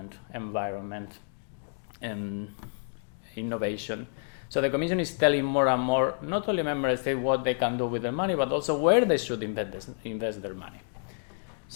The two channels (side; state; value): right; silent; 58 dB below the other